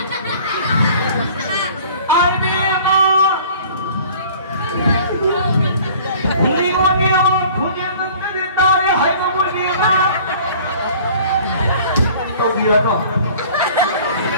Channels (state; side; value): inverted; both; correlation -0.49